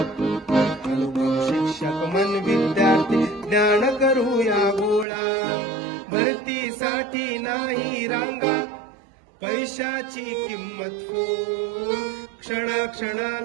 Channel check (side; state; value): left; drops out; at 5.1 s